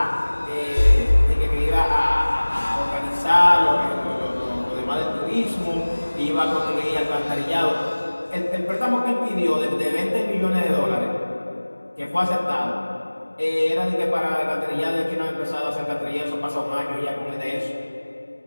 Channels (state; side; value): inverted; both; correlation -1.00